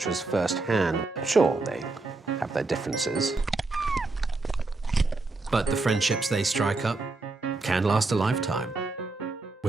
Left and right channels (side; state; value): left; quieter; 3.5 dB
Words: firsthand. Sure, they have their differences, but the friendships they strike up can last a lifetime,